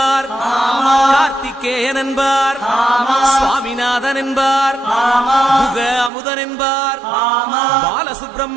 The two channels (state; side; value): drops out; left; at 6.1 s